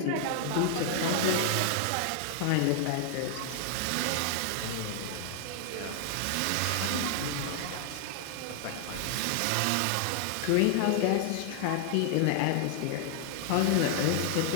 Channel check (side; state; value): both; different; correlation 0.00